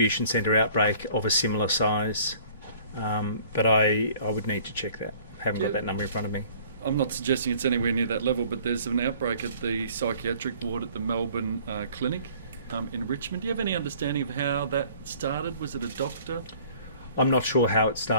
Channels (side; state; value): both; inverted; correlation -0.54